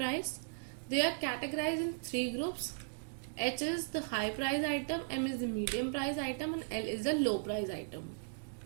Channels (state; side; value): silent; left; digital silence